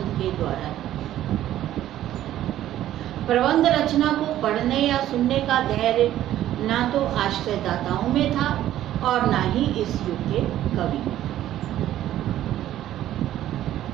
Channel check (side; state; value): left; quieter; 12.8 dB